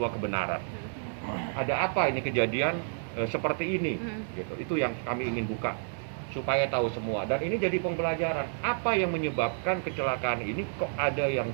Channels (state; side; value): silent; left; 58 dB below the other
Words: kebenaran. Ada apa ini kejadian seperti ini? Gitu. Itu yang kami ingin buka supaya tahu semua, dan ini jadi pembelajaran apa yang menyebabkan kecelakaan ini, kok ada yang